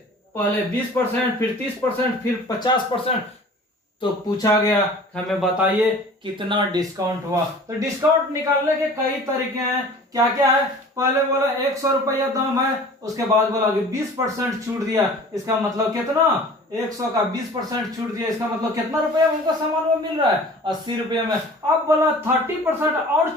पहले 20%, फिर 30%, फिर 50%। तो पूछा गया हमें बताइए कितना डिस्काउंट हुआ। तो डिस्काउंट निकालने के कई तरीके हैं। क्या क्या है? पहले बोला 100 रुपया दाम है, उसके बाद बोला कि 20% छूट दिया। इसका मतलब कितना? 100 का 20% छूट दिया। इसका मतलब कितना रुपया उनको सामान में मिल रहा है? 80 रुपये में। अब बोला 30% और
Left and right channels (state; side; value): normal; both; correlation 0.45